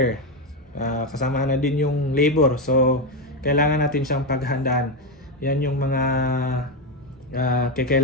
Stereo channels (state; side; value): normal; both; correlation 0.09